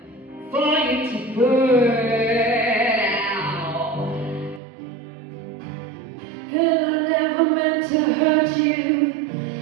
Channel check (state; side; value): drops out; left; at 4.6 s